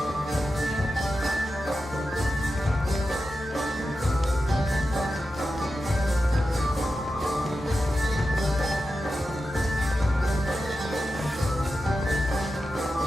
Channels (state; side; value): normal; both; correlation 0.91